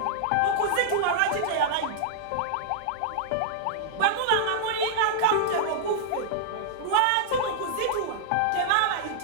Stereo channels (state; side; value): different; both; correlation -0.01